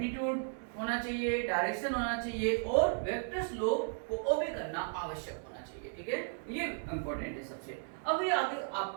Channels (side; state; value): left; silent; digital silence